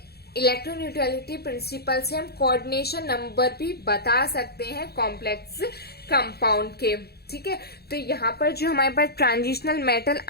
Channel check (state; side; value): late; right; 0.46 ms